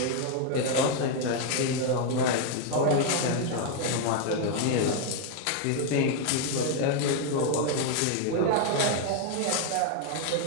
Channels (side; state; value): both; different; correlation 0.00